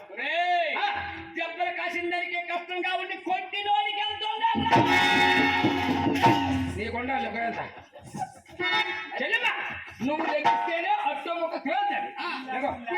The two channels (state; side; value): identical; both; correlation 1.00